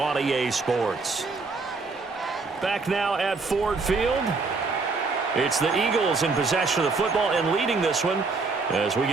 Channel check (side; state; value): left; quieter; 4.1 dB